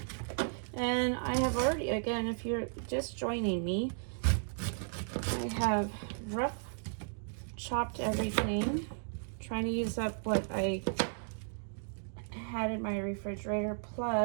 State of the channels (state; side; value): silent; left; digital silence